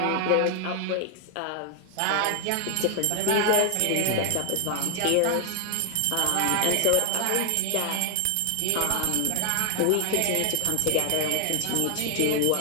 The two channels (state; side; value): different; both; correlation 0.00